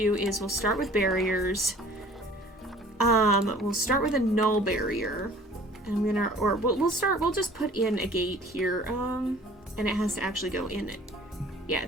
is we'll start with barriers. We'll start with a null barrier. And we'll just put in a gate here. And it has to actually go in it. Yeah,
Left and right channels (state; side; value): normal; both; correlation 0.50